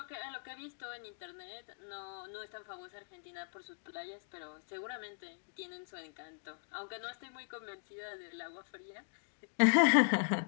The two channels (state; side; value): silent; right; digital silence